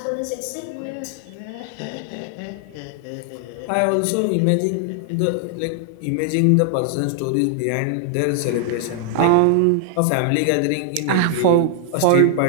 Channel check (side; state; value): both; different; correlation 0.00